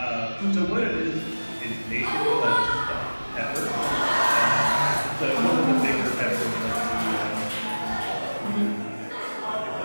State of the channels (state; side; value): inverted; both; correlation -1.00